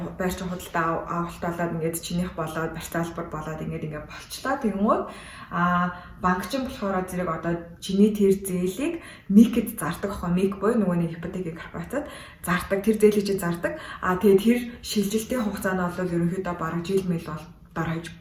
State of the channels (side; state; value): both; identical; correlation 1.00